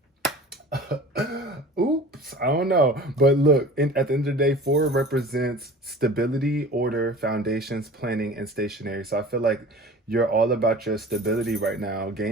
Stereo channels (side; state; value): both; normal; correlation 0.40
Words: Oops, I don't know. But look, at the end of the day, 4 represents stability, order, foundations, planning, and stationary. So I feel like you're all about your stability right now,